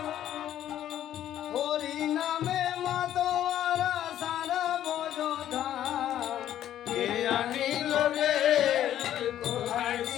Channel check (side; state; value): right; quieter; 11.5 dB